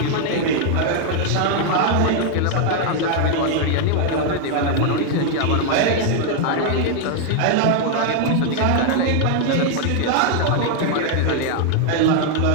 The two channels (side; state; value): both; different; correlation 0.00